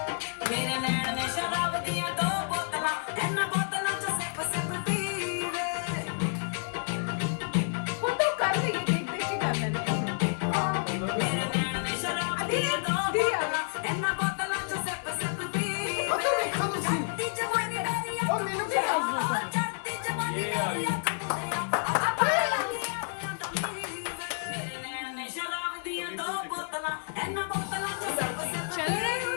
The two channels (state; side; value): silent; right; digital silence